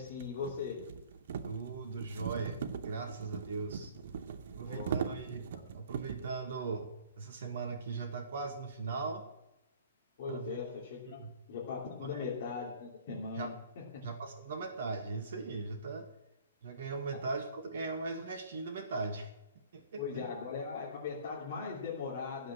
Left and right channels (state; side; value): inverted; both; correlation -0.51